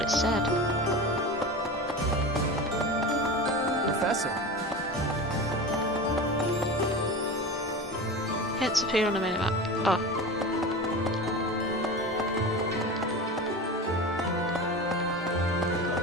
said. Professor. Hints appear on the minimap. Oh.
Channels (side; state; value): both; normal; correlation 0.29